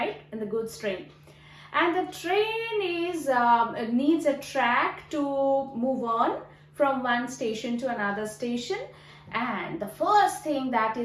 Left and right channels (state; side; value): identical; both; correlation 1.00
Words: In the goods train. And the train is needs a track to move on from one station to another station, and the first thing that